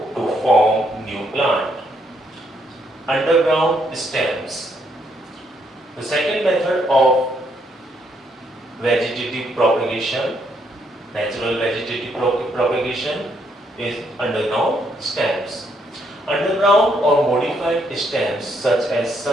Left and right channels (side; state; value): both; normal; correlation 0.73